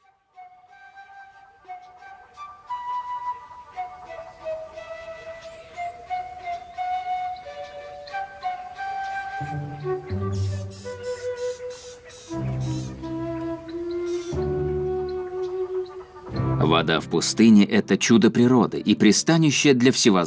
Вода в пустыне – это чудо природы и пристанище для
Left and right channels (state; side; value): identical; both; correlation 1.00